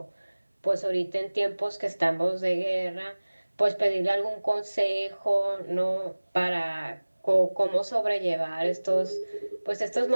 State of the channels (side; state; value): both; inverted; correlation -1.00